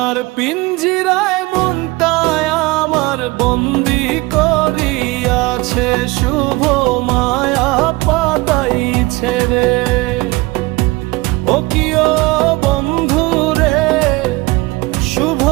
পিঞ্জিরায় মনটায় আমার বন্দি করিয়াছে, শুভ মায়া পাতাইছে রে। ও কিও বন্ধু রে, শুভ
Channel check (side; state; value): left; quieter; 22.4 dB